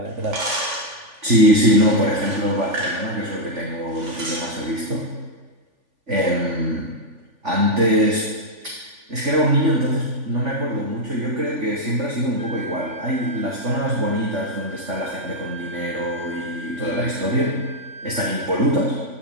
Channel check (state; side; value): late; left; 3.5 ms